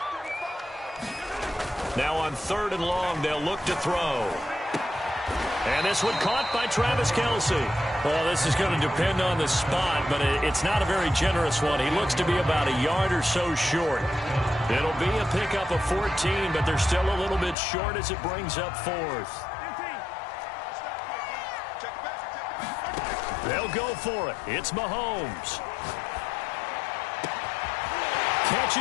Now on third and long, they'll look to throw. And this one caught by Travis Kelce. Well, this is going to depend on the spot, but it's not a very generous one. He looks to be about a yard or so short. It'll be a pickup of 14, but they're still a little bit short as it brings up fourth. They'll go for it. It's Mahomes. Catch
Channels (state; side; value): drops out; right; at 17.6 s